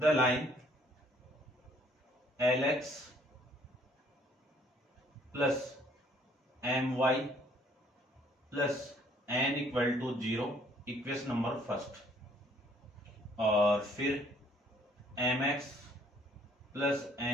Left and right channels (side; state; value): both; normal; correlation 0.61